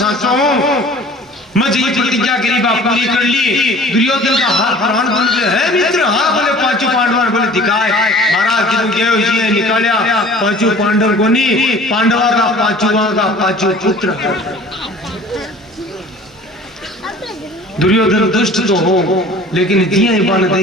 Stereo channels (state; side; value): normal; both; correlation 0.46